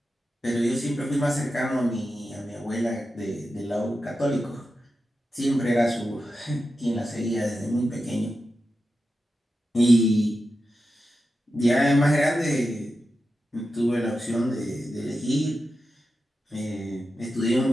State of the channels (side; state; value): both; normal; correlation 0.91